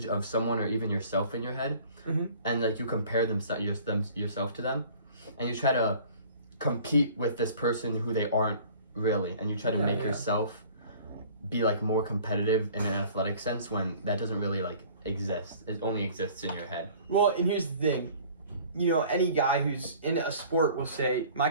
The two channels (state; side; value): inverted; both; correlation -0.49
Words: of someone or even yourself in your head, and like you compare yourself to them, and you try to compete with this person who they aren't really, and you try to make yourself be like more competitive in an athletic sense when that doesn't really like exist. It only exists in your head. Well, and here's the thing. You know, any guy who's in a sport will say, my